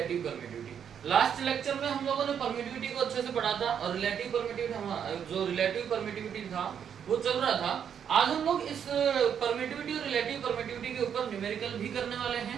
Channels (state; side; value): quieter; left; 8.2 dB